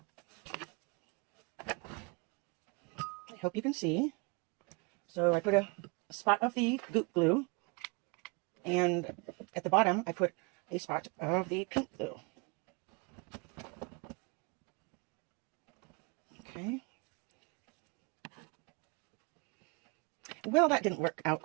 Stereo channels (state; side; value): quieter; left; 30.3 dB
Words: I hope you can see. So I put a spot of the Goop glue, and at the bottom I put a spot of the pink glue. Okay. Well, that didn't work out